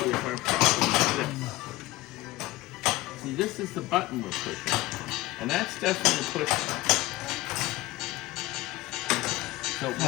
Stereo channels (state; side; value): quieter; right; 18.8 dB